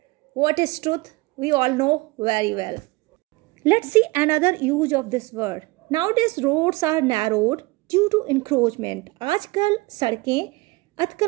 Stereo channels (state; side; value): quieter; left; 23.1 dB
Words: What is truth we all know very well. Let's see another use of this word. Nowadays roads are narrowed due to encroachment. आजकल सड़कें